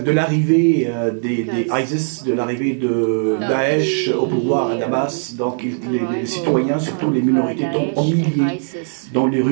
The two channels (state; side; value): silent; left; digital silence